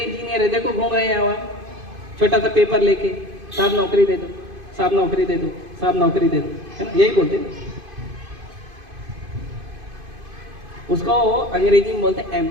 है देखो घूम रहे हैं वहां, छोटा सा पेपर लेके, साहब नौकरी दे दो, साहब नौकरी दे दो, साहब नौकरी दे दो, है ना, यही बोलते हैं। उसको अंग्रेजी में बोलते हैं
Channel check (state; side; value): late; left; 2.5 ms